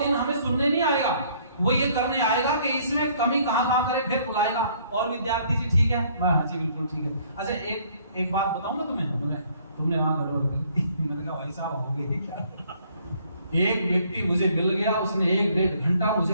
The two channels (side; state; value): both; inverted; correlation -0.62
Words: दिन हमें सुनने नहीं आएगा, वो ये करने आएगा कि इसमें कमी कहाँ करे, फिर बुलाएगा। और विद्यार्थी जी ठीक है? हाँ जी बिल्कुल ठीक है। अच्छा एक बात बताऊं मैं तुम्हें, तुमने हाँ गड़बड़ कर। मैंने कहा भाई साहब हो गई क्या? एक व्यक्ति मुझे मिल गया, उसने 1-1.5 घंटा मुझे